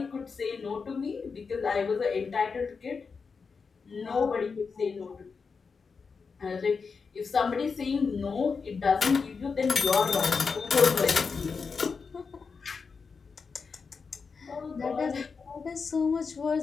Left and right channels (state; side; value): quieter; right; 5.2 dB